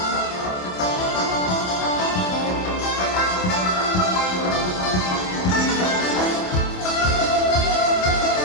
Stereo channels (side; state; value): right; late; 27 ms